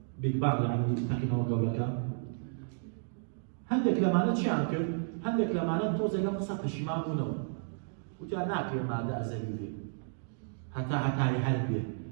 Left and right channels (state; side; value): silent; left; digital silence